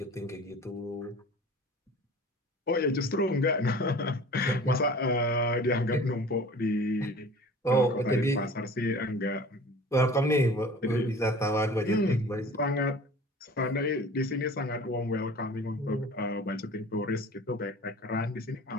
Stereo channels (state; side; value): normal; both; correlation 0.42